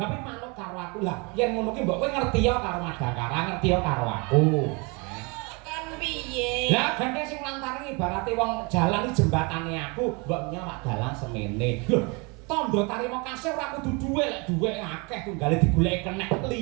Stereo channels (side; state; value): left; quieter; 29.8 dB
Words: manut karo aku lah. Yen ngono ki mbok kowe ngerti ya karo Madakara, ngerti ya karo aku. Piye? Lah ganteng sing lantaran ibarate wong jalan iki jembatane aku, mbok nyawak dalan semene. Lho, tandha tarima kasih ora kudu duwe, lek duwe akeh tunggale digoleki kenek,